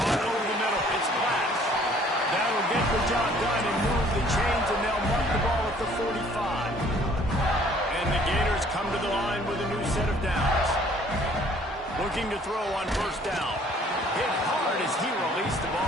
over the middle, it's Glass. That'll get the job done and move the chains, and they'll mark the ball at the 45. And the Gators come to the line with a new set of downs. Looking to throw on 1st down. Hit hard as he released the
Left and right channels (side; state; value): both; normal; correlation 0.57